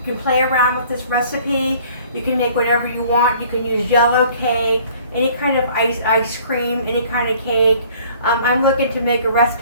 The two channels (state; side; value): inverted; both; correlation -0.54